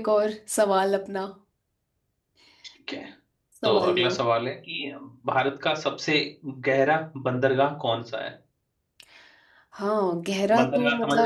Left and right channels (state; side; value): identical; both; correlation 1.00